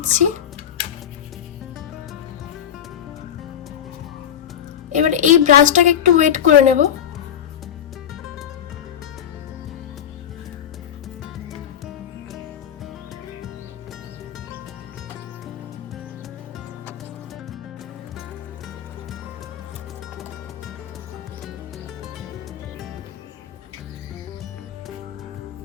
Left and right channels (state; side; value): quieter; right; 9.4 dB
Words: এবার এই ব্রাশটাকে একটু ওয়েট করে নেব।